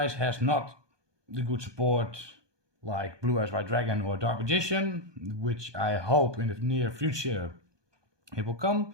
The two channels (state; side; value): late; left; 1.2 ms